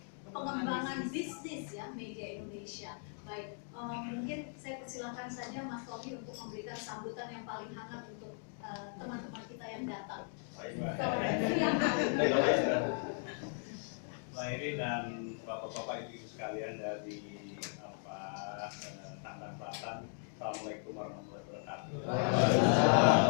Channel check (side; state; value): right; silent; 53 dB below the other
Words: Pengembangan Bisnis ya Media Indonesia. Baik, mungkin saya persilakan saja Mas Tommy untuk memberikan sambutan yang paling hangat untuk teman-teman kita yang datang. Mbak Irin dan bapak-bapak ibu sekalian dari Tangerang Selatan, Assalamualaikum warahmatullahi wabarakatuh.